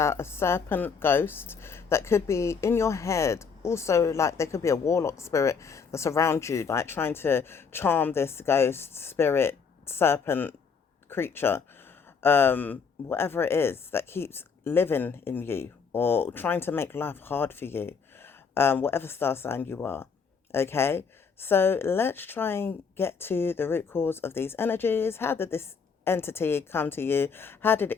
a serpent ghost that could be in your head. Also, like there could be a warlock spirit that's around you, like trying to charm this ghost spirit serpent creature, whatever it is that keeps living in you or trying to make life hard for you, whatever star sign you are. Okay, so let's try and get to the root cause of these energies. How did this entity come to you? How did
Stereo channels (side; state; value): right; quieter; 5.8 dB